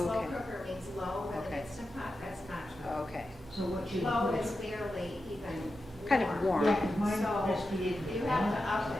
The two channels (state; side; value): normal; both; correlation 0.90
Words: cooker means low, with an Instant Pot, that's not true. Okay. So what you Low is barely even Kind of warm. Yeah, 'cause mine So has to be you have to up